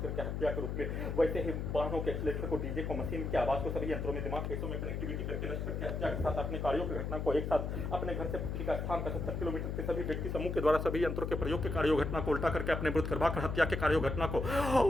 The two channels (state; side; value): noise; left; hum, 3 dB below the sound